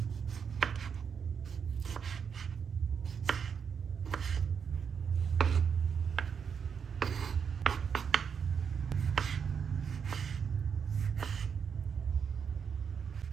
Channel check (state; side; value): quieter; left; 6.8 dB